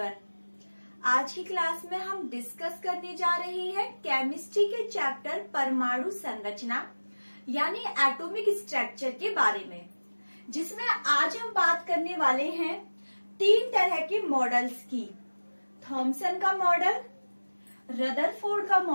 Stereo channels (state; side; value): inverted; both; correlation -1.00